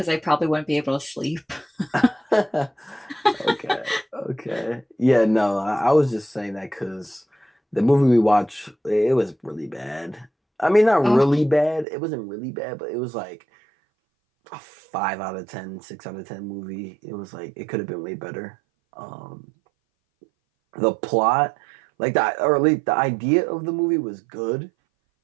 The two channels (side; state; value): left; drops out; at 11.9 s